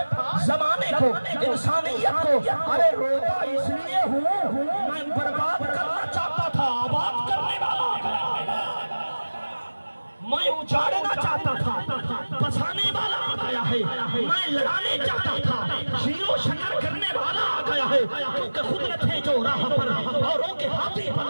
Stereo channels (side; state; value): both; inverted; correlation -1.00